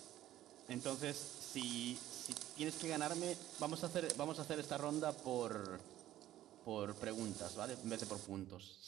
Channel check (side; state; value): left; quieter; 13.5 dB